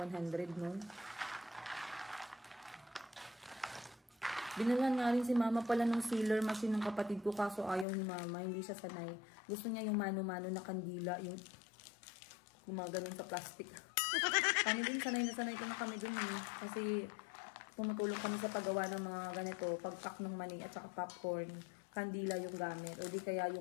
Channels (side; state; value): right; drops out; at 7.9 s